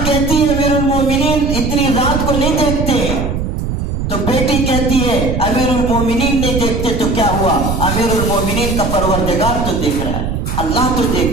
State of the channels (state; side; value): noise; right; rumble, 3 dB below the sound